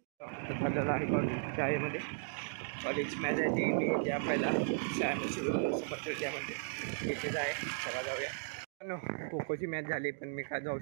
चाललेलं आहे कॉलेज शाळेमध्ये. कॉलेज मॅच आहे ती मी त्या पहिला शाळेमध्ये इथेच आहे. चला जाऊया. खो खोची मॅच झाली, पण मी काय जाऊ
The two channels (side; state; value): left; silent; digital silence